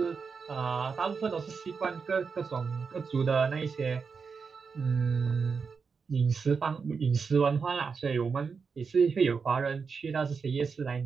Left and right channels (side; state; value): left; quieter; 5.4 dB